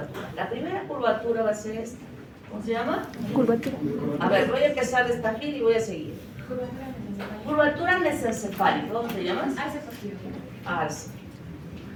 La primera curvatura va a ser esta. ¿Cómo se llama? Curvatura. A ver, voy a empezar de esta fila y voy a seguir. Curvatura mesencefálica. ¿Cómo se llama? Arce.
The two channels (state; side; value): identical; both; correlation 1.00